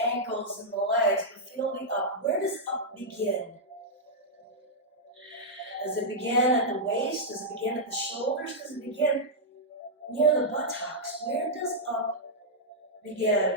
ankles, and the legs, but feel the up. Where does up begin? Does it begin at the waist? Does it begin at the shoulders? Does it begin near the buttocks? Where does up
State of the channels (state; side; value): normal; both; correlation -0.07